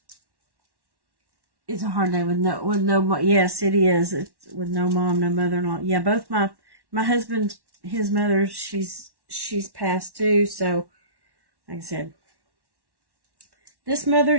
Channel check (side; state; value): left; late; 1.1 ms